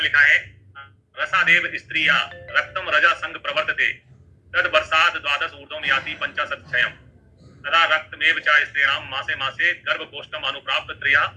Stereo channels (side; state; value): both; identical; correlation 1.00